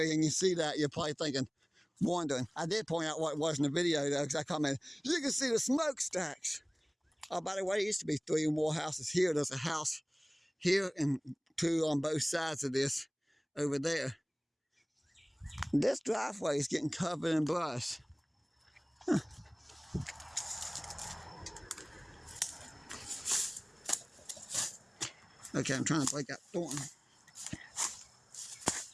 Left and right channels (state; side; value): identical; both; correlation 1.00